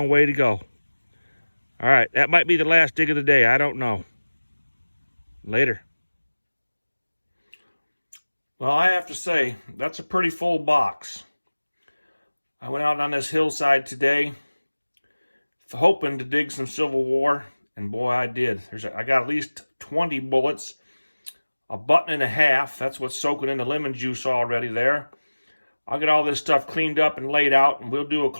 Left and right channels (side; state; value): both; inverted; correlation -1.00